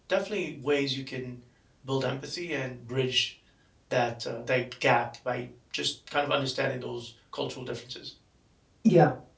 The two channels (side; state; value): both; identical; correlation 1.00